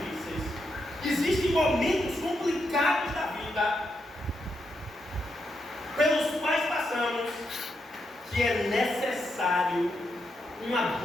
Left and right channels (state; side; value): normal; both; correlation 0.82